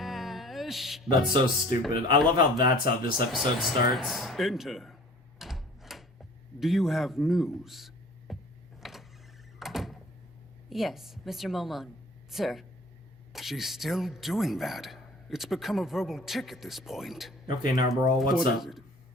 That's so stupid. I love how that's how this episode starts. Enter. Do you have news? Yes, Mr. Momon. Sir. She's still doing that. It's become a verbal tick at this point. Okay, Narbaral, what's What up? is it?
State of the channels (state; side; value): normal; both; correlation 0.48